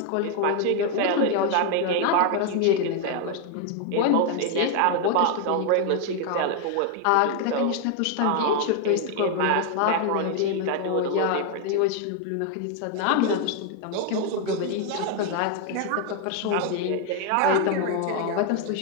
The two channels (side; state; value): both; different; correlation 0.00